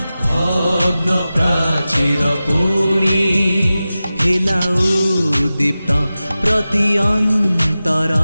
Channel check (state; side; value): inverted; both; correlation -0.95